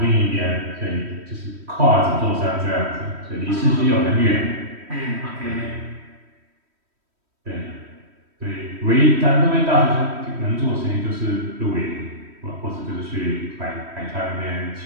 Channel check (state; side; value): late; left; 3.1 ms